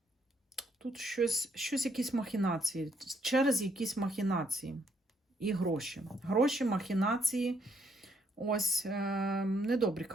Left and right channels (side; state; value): both; normal; correlation 0.71